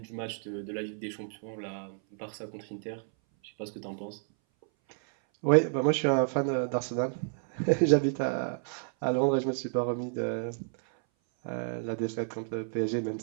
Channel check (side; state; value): left; silent; 57 dB below the other